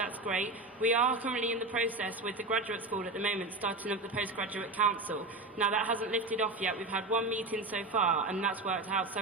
great. We are currently in the process with the graduate school at the moment, starting up the postgraduate council. Now that hasn't lifted off yet. We've had one meeting so far, and that's worked out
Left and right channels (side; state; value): left; quieter; 3.2 dB